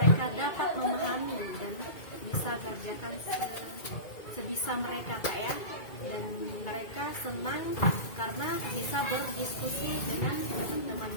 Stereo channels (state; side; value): late; right; 2.2 ms